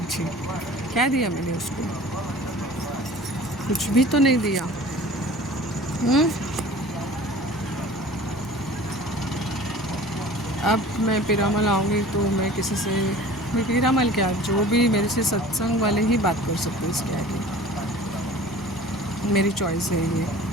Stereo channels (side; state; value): both; normal; correlation 0.44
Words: क्या दिया मैंने उसको? कुछ भी तो नहीं दिया। अब मैं पीरामल आऊँगी तो मैं किसी से, मैं पीरामल क्या, जो भी मेरे से सत्संग वाले ही बात कर सकते हैं इसके आगे। मेरी चॉइस है ये।